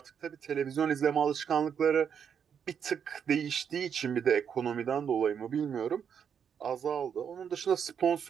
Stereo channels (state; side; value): quieter; left; 7.6 dB